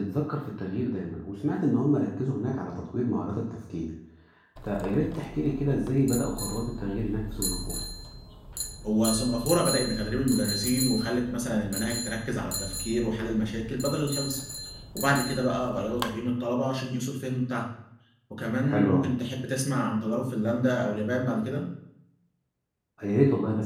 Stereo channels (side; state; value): both; identical; correlation 1.00